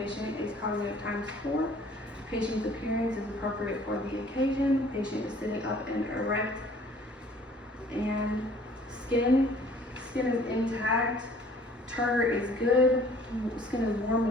is cognitive times 4. Patient's appearance is appropriate for the occasion. Patient is sitting up and erect. And skin is intact. Turgor is good. Skin is warm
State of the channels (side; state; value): both; normal; correlation 0.54